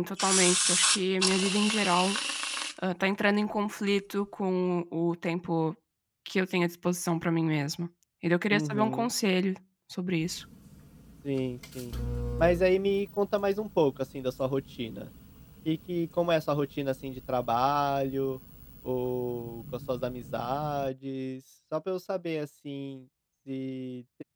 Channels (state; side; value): identical; both; correlation 1.00